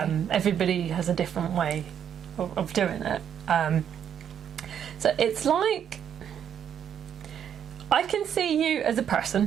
Everybody has a different way of doing it. So it's like I can see you as a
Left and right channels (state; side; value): quieter; left; 8.8 dB